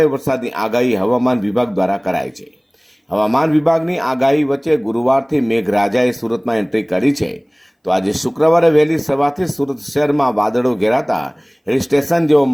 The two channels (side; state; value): both; identical; correlation 1.00